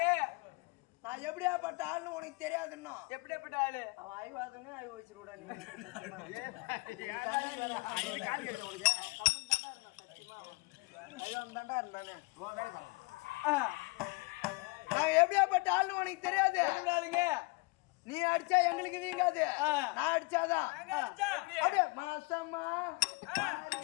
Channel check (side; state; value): right; quieter; 27.6 dB